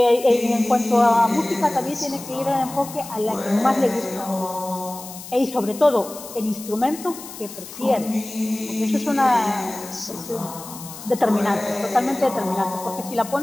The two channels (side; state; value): left; noise; hiss, 14 dB below the sound